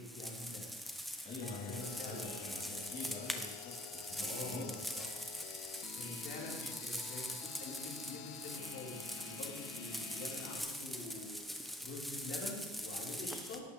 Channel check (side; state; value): both; normal; correlation 0.62